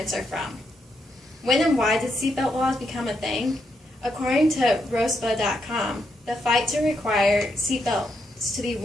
are from. When and why did seatbelt laws become a thing? According to ROSPA.com, the fight to require seatbelts to be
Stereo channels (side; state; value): both; normal; correlation 0.80